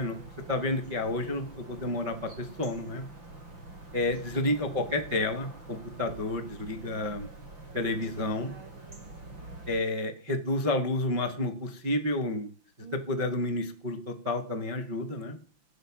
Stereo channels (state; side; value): late; left; 5.8 ms